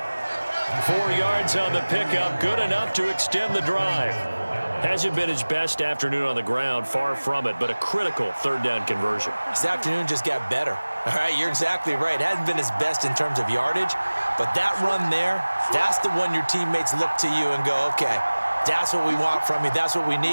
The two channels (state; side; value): inverted; both; correlation -1.00